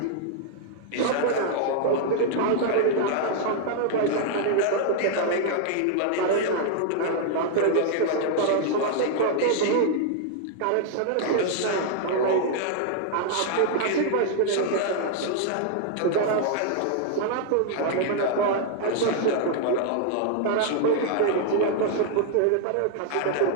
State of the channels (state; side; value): different; both; correlation -0.01